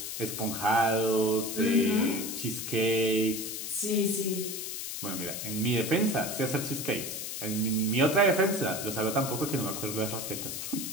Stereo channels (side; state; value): left; noise; hiss, 5 dB below the sound